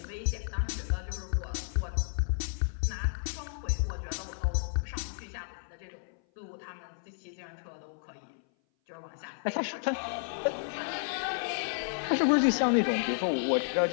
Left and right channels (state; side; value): silent; right; 56 dB below the other